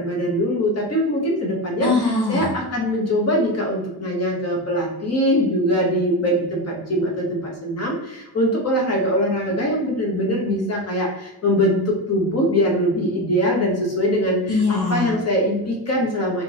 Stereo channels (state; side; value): normal; both; correlation 0.18